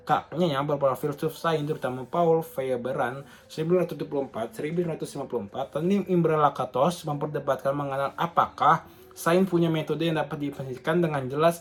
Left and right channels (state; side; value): identical; both; correlation 1.00